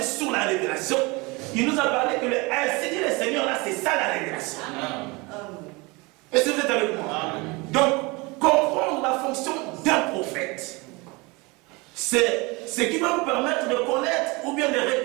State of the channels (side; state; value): left; quieter; 25.8 dB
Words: sur la révélation. Il nous a parlé que le ainsi dit les Seigneurs, là, c'est ça la révélation. Amen. Est-ce que vous êtes avec moi? Amen. Donc, comprendre la fonction d'un prophète, c'est ce qui va nous permettre de connaître ou bien de